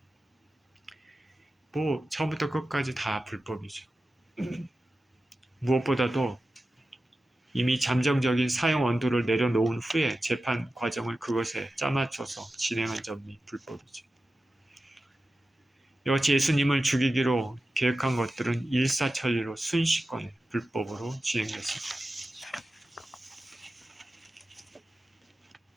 뭐 처음부터 끝까지 다 불법이죠. 무엇보다도 이미 잠정적인 사형 원도를 내려놓은 후에 재판 과정을 그것에 짜맞춰서 진행한 점이 불법이죠. 이같이 예수님을 죽이기로 계획한 것들은 일사천리로 순식간에 불법으로 진행됐습니다.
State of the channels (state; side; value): normal; both; correlation 0.94